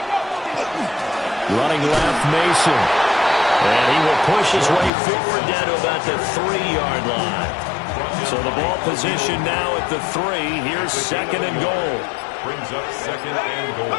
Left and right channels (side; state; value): right; drops out; at 4.9 s